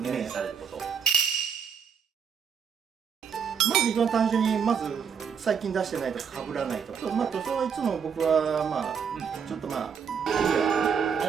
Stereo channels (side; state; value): left; quieter; 6.9 dB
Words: イメージされること。まず一番単純に最近出してないとか被らないとか、塗装はいつも僕はちょっとクリア